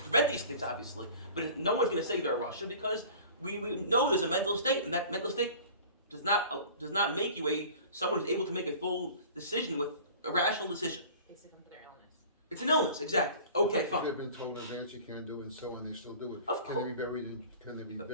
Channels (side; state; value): both; inverted; correlation -0.43